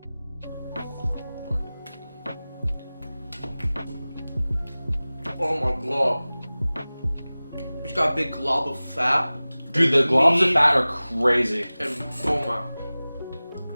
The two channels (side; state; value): both; inverted; correlation -0.98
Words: Oh my god. It's got a big glob of fat. Dude, the globs of Meat. fat are crazy. And oh my.